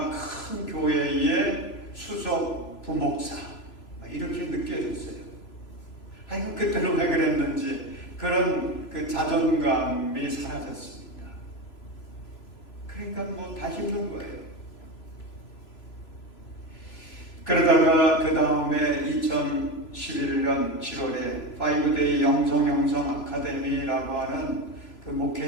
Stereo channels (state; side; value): late; right; 3.0 ms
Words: 큰 교회의 수석 부목사 이렇게 느껴졌어요. 아이고, 그때는 왜 그랬는지 그런 그 자존감이 사라졌습니다. 그러니까 뭐 다 힘든 거예요. 그러다가 그 다음에 2011년 7월에 5데이 영성 아카데미라고 하는 그